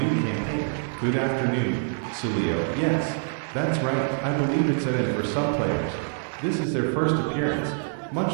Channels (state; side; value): silent; left; 61 dB below the other